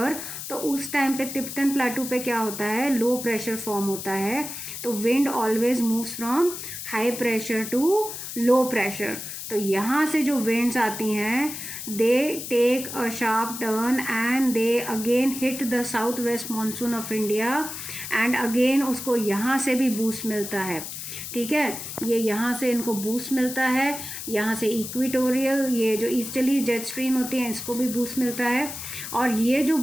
तो उस टाइम पे तिब्बतन प्लाटू पे क्या होता है, लो प्रेशर फॉर्म होता है। तो wind always moves from high pressure to low pressure. तो यहाँ से जो विंड्स आती हैं they take a sharp turn and they again hit the south west monsoon of India and again उसको यहाँ से भी बूस्ट मिलता है, ठीक है। ये यहाँ से इनको बूस्ट मिलता है, यहाँ से इक्वेटोरियल ये जो ईस्टर्ली जेट स्ट्रीम होती है इसको भी बूस्ट मिलता है। और ये जो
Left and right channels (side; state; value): left; noise; hiss, 8 dB below the sound